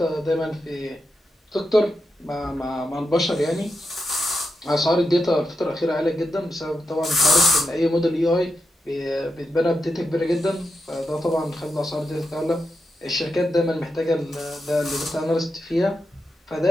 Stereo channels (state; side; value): normal; both; correlation 0.87